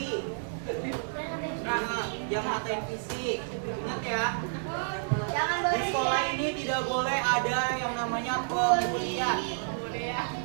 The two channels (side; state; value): left; silent; digital silence